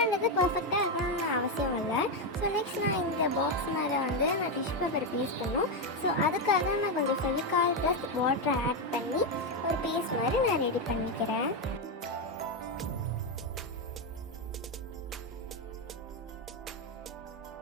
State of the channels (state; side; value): normal; both; correlation 0.06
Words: பர்ஃபெக்டாக இருக்கணும்னு அவசியம் இல்லை. ஸோ நெக்ஸ்ட் நான் இந்த பாக்ஸ் மேலே வந்து நான் டிஷ்யூ பேப்பர் பேஸ்ட் பண்ணும். ஸோ அதுக்காக நான் கொஞ்சம் ஃபெவிகால் ப்ளஸ் வாட்டரை ஆட் பண்ணி ஒரு பேஸ்ட் மாதிரி நான் ரெடி பண்ணிக்கிறேன்.